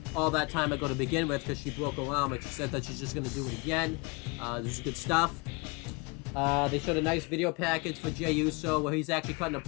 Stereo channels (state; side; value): quieter; right; 28.9 dB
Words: all that time ago to begin with because she broke her arm, and she said that she's just going to do it again. This is good stuff. They showed a nice video package for Jey Uso where he's actually cutting a